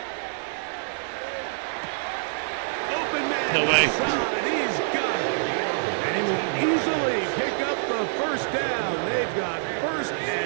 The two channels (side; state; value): left; silent; 61 dB below the other